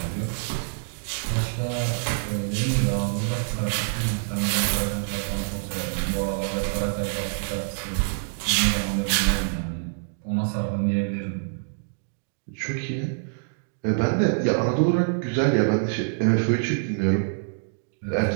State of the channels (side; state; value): left; silent; digital silence